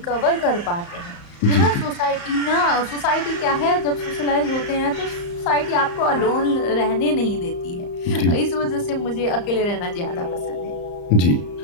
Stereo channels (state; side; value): late; right; 34 ms